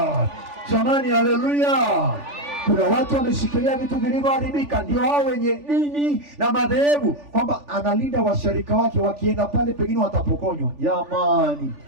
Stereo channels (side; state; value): left; late; 3.4 ms